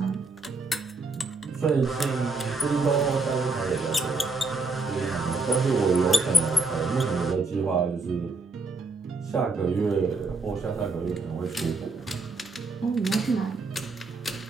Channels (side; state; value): left; quieter; 3.5 dB